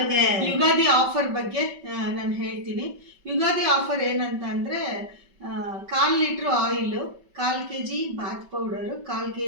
ಯುಗಾದಿ ಆಫರ್ ಬಗ್ಗೆ ನಾನು ಹೇಳ್ತೀನಿ. ಯುಗಾದಿ ಆಫರ್ ಏನಂತ ಅಂದ್ರೆ 1/4 litre oil, 1/4 kg bath powder, 1/4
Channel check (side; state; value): left; late; 5.3 ms